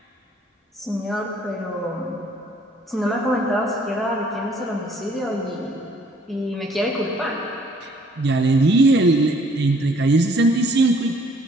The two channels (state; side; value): normal; both; correlation 0.60